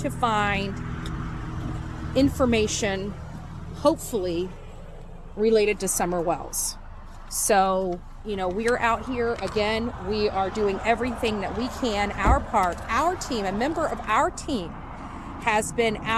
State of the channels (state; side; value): identical; both; correlation 1.00